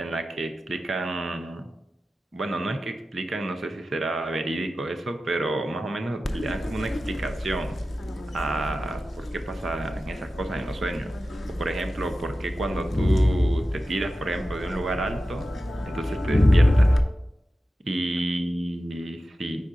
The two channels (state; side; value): normal; both; correlation 0.93